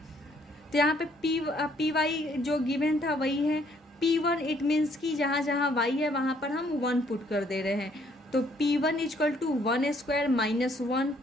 तो यहाँ पे Py जो गिवन था वही है। P1 इट मीन्स कि जहाँ जहाँ y है वहाँ पर हम 1 पुट कर दे रहे हैं। तो P1 = 1² - 1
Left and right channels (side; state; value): both; normal; correlation 0.65